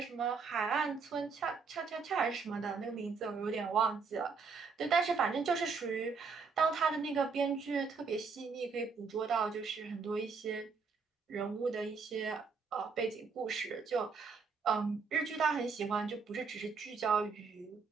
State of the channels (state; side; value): quieter; left; 5.1 dB